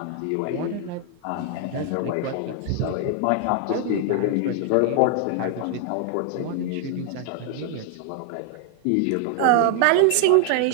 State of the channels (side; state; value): both; different; correlation 0.00